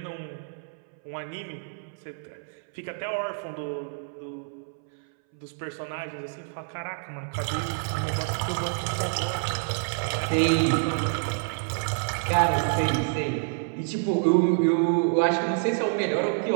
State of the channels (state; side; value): silent; left; 60 dB below the other